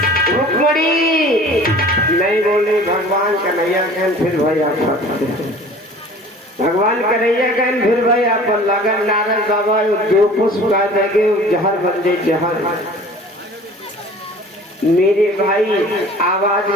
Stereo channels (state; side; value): normal; both; correlation 0.45